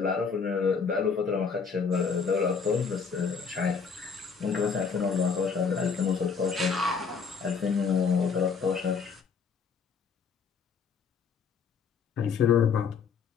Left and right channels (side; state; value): right; quieter; 5.8 dB